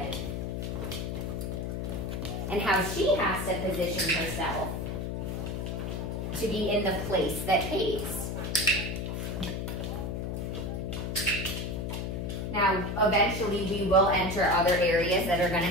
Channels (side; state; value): left; noise; hum, 3 dB below the sound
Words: And how she has to position herself to be in the place that pays. Now, eventually we will enter other areas that are going to